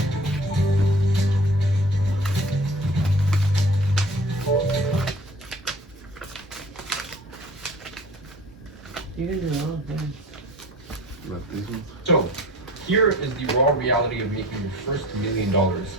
You can do all things. Like these ones? So, here is the raw reality of making your first $1 million,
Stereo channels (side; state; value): both; normal; correlation 0.45